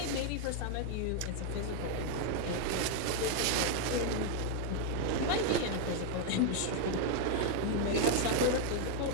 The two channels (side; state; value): both; different; correlation 0.01